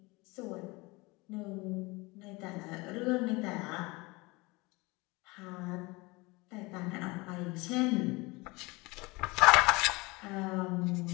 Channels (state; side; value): quieter; right; 24.3 dB